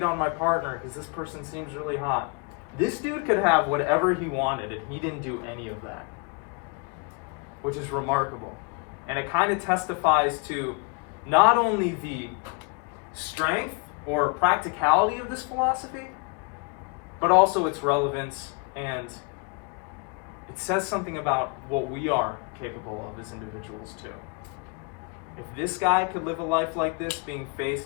on my partner because this person seems really hot. This dude could have whatever he wanted, and he didn't do any of that, which is remarkable. And it kind of testifies to not only the strength or practicality of this philosophy, but also its relevance, and it says something about what we are capable of as individuals too. If this guy could live a life like this, being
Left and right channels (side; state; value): right; quieter; 33.1 dB